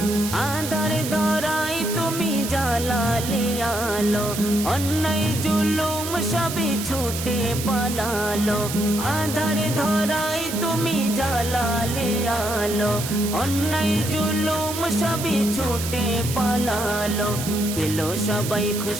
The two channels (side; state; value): right; noise; hiss, 7 dB below the sound